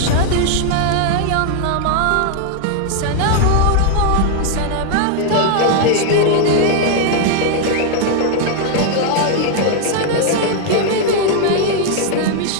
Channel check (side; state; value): both; different; correlation 0.00